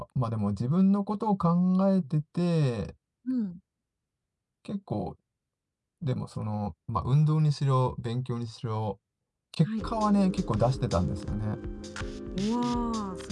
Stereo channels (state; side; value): identical; both; correlation 1.00